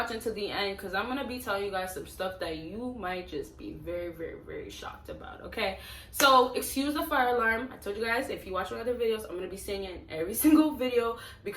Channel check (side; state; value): both; identical; correlation 1.00